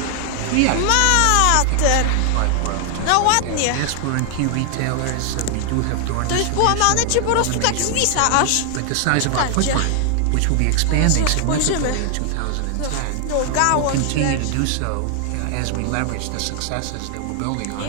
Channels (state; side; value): different; both; correlation 0.00